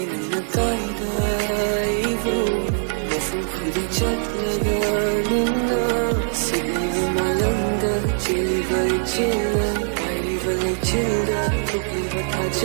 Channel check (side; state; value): left; silent; digital silence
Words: nang nagkaida Ivo Mafam kudi chat laga nuna Sige malang da Chiliva ichila Valay childa, tukli bata